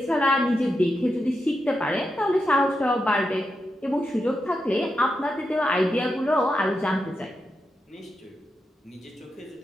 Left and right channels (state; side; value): normal; both; correlation 0.87